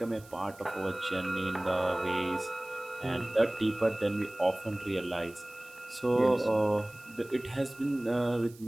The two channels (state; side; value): noise; right; hiss, 23 dB below the sound